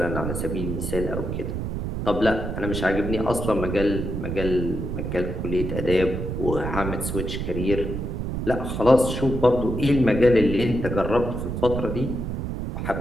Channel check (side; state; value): right; noise; rumble, 4 dB below the sound